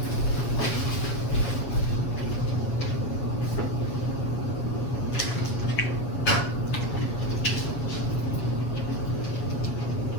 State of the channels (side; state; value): right; late; 7.7 ms